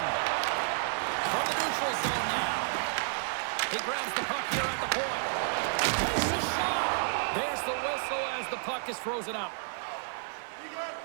From the neutral zone now. He grabs the puck here at the point. Takes a shot. There's the whistle as the puck is frozen up.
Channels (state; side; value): silent; left; digital silence